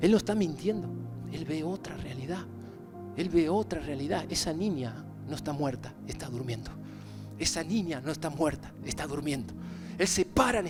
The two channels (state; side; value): identical; both; correlation 1.00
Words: Él no está mintiendo, Él ve otra realidad. Él ve otra realidad. Esa niña no está muerta, está durmiendo. Esa niña no está muerta, está durmiendo. Él se para en